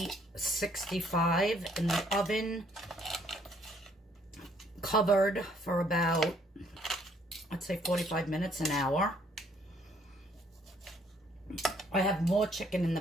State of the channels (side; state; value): both; normal; correlation 0.65